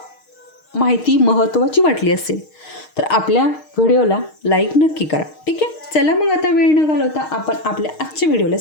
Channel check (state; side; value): late; right; 6.5 ms